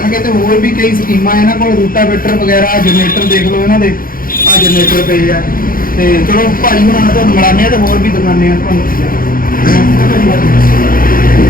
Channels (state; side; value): late; right; 0.41 ms